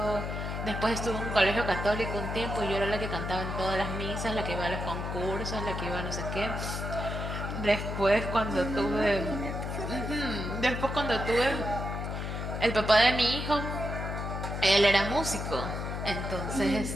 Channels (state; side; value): noise; left; hum, 4 dB below the sound